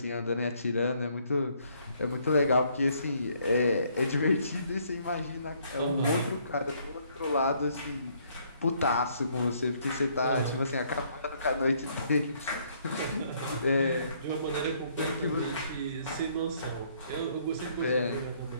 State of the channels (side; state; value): both; inverted; correlation -0.67